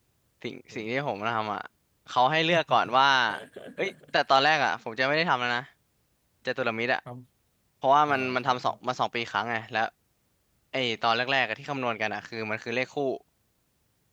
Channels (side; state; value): both; identical; correlation 1.00